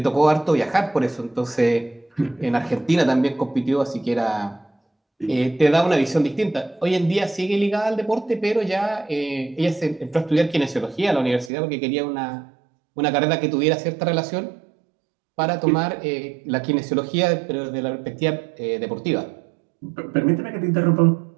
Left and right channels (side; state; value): left; drops out; at 11.5 s